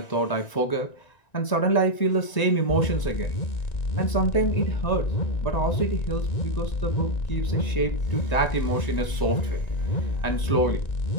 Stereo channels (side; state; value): right; late; 1.9 ms